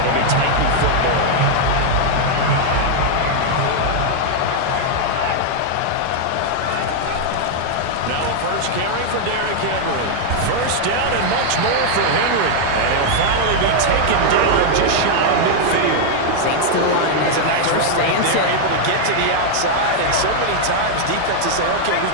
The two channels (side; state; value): both; different; correlation 0.00